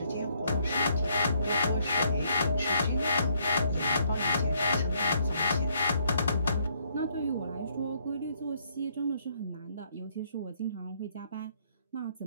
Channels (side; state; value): both; inverted; correlation -0.70